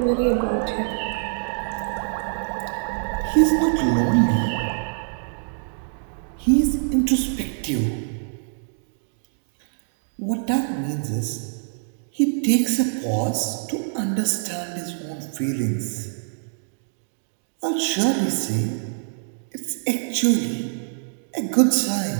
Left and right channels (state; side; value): silent; left; digital silence